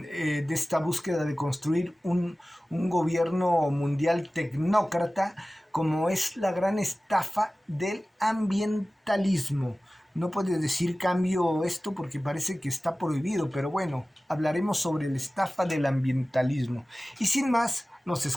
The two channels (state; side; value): normal; both; correlation 0.97